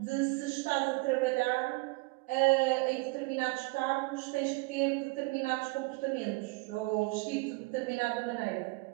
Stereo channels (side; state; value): left; quieter; 25.7 dB